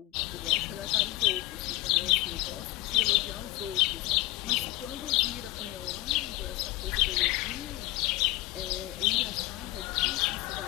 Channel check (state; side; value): quieter; right; 18.4 dB